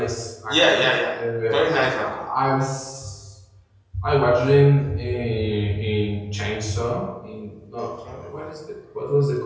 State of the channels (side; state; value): both; identical; correlation 1.00